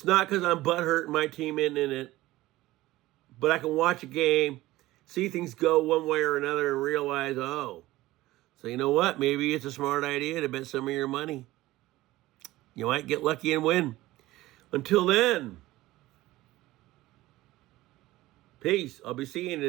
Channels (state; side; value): quieter; left; 17.4 dB